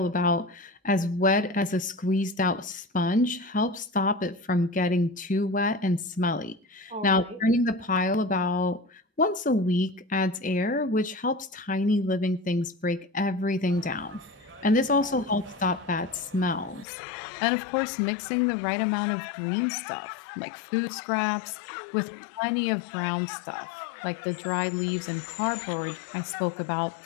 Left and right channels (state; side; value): drops out; right; at 16.9 s